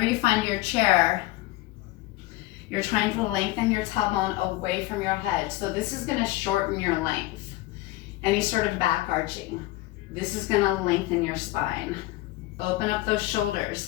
you find your chair, you're trying to lengthen your tailbone away from your head. So this is gonna shorten your length. Any sort of back arching. This is gonna lengthen your spine. Open up those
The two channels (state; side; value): quieter; right; 17.9 dB